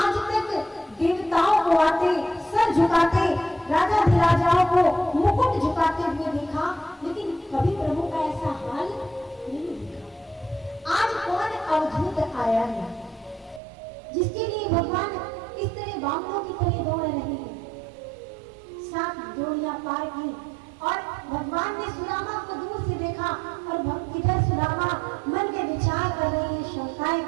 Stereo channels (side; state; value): left; drops out; at 13.6 s